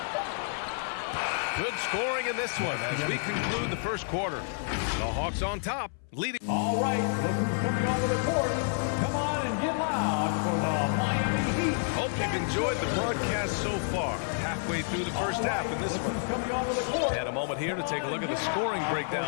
Good scoring in this one as we conclude the first quarter. The Hawks on top, leading. All right, look who's coming onto the court. Come on and get loud for the Miami Heat. Hope you've enjoyed the broadcast so far. Halfway through the first half in this one. Coming onto the court. And a moment here to take a look at the scoring breakdown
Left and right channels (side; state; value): right; silent; 58 dB below the other